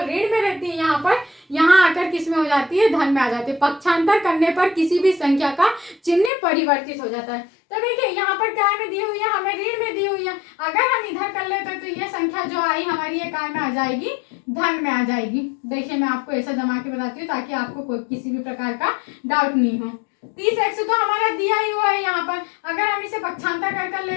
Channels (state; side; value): drops out; right; at 6.3 s